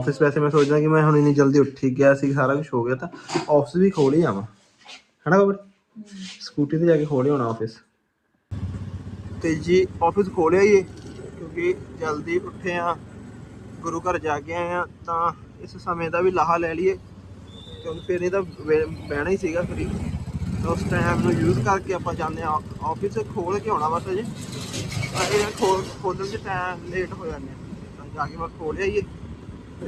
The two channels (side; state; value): both; identical; correlation 1.00